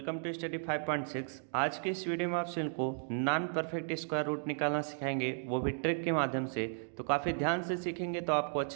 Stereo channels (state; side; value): silent; left; digital silence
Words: to study 5.6। आज के इस वीडियो में आप सभी को नॉन परफेक्ट स्क्वायर रूट निकालना सिखाएंगे, वो भी ट्रिक के माध्यम से। तो काफ़ी ध्यान से सीखेंगे तो आपको